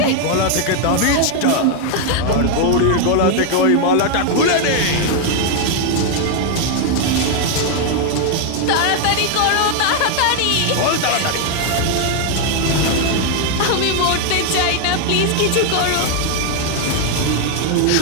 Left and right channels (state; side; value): different; both; correlation 0.00